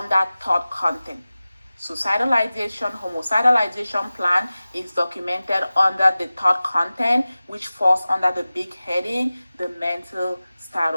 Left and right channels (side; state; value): both; inverted; correlation -0.97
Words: thought content. Suicidal ideation, homicidal ideation plan is documented under the thought content, which falls under the big heading, the mental